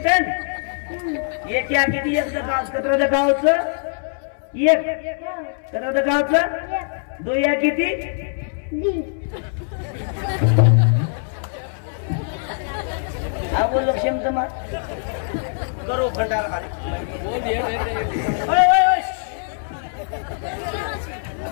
एक या किती एक कत्र गावचं एक कत्र गावचं दो या किती हा बोल क्षमता करो भंडार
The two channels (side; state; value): right; silent; 64 dB below the other